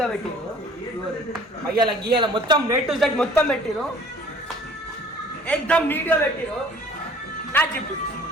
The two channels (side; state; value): both; normal; correlation 0.51